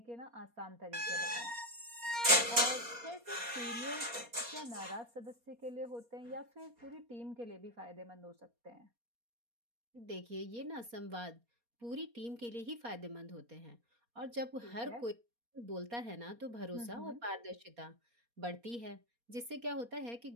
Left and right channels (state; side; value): late; left; 4.2 ms